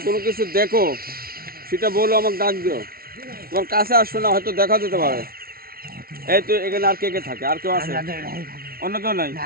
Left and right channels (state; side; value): late; left; 0.44 ms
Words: কোনো কিছু দেখো সেটা বলো, আমাকে ডাক দিও। তোমার কাছে আসবে না, হয়তো দেখা যেতে পারে। এই তো এখানে আর কে কে থাকে? আর কেউ আছে? আমরা দুই ভাই থাকি। অন্য কেউ নাই?